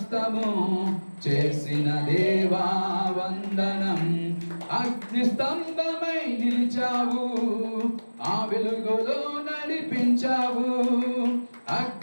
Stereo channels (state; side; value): inverted; both; correlation -1.00